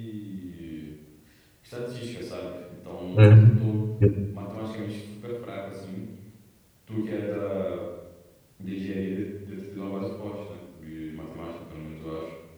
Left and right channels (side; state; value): both; identical; correlation 1.00